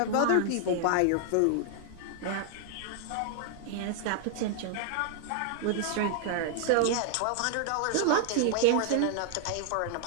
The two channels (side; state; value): both; different; correlation 0.00